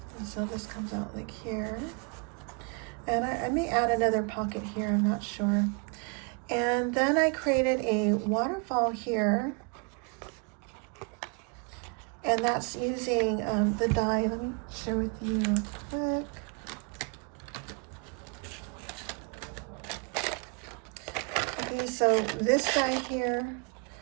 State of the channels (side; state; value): left; quieter; 34.6 dB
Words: And so this comes out like here. And I may add another pocket here, I'm not sure. And then I created a waterfall here. And that's using the die. Let me share with you real quick. Okay, so this die here,